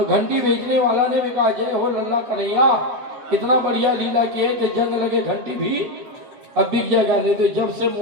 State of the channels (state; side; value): late; left; 7.8 ms